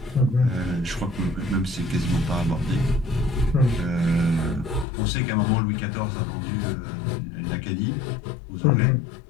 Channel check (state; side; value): drops out; right; at 4.9 s